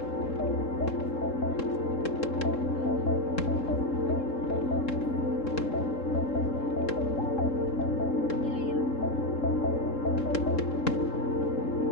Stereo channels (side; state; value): right; late; 3.7 ms